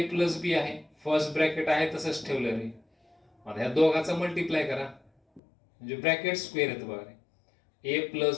प्लस बी आहे, फर्स्ट ब्रॅकेट आहे तसंच ठेवलं रे. आता ह्या दोघाचा मल्टिप्लाय करा म्हणजे ब्रॅकेट स्क्वेअर येतं बघा रे. A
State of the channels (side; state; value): right; drops out; at 5.4 s